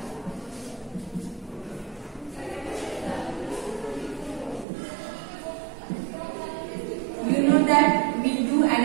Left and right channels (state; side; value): drops out; left; at 4.7 s